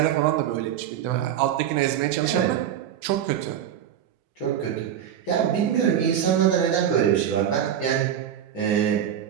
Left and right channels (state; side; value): quieter; left; 9.8 dB